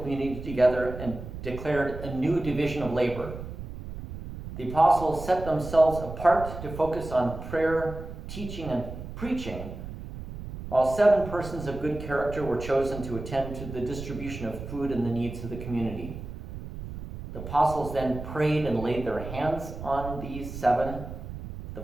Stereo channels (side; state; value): right; noise; rumble, 10 dB below the sound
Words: together and declared a new division of labor. The apostles set themselves apart to focus on prayer, teaching, and preaching, while 7 persons of good character were chosen to attend to the distribution of food and the needs of the community. The apostles then prayed and laid their hands on these 7, the